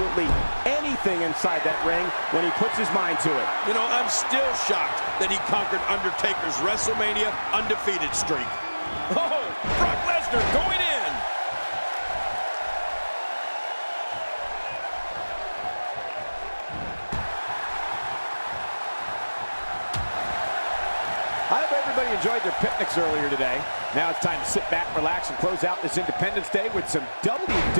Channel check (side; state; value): both; inverted; correlation -1.00